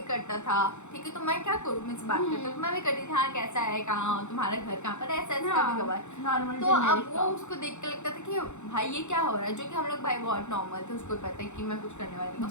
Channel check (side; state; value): right; late; 0.83 ms